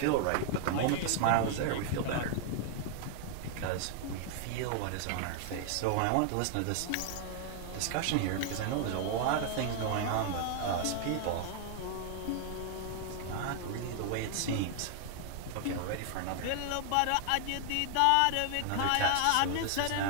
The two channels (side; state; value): both; different; correlation 0.00